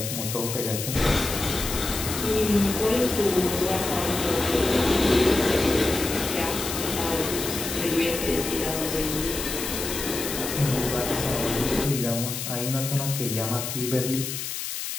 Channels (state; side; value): noise; left; hiss, 5 dB below the sound